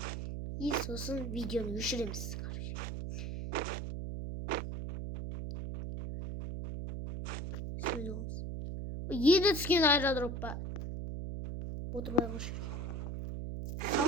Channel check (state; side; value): noise; right; hum, 5 dB below the sound